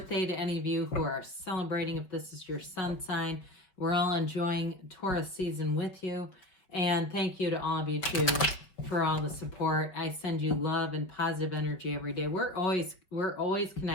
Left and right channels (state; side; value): late; right; 5.2 ms